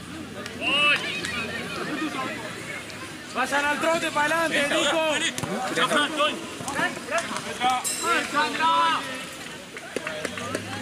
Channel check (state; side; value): identical; both; correlation 1.00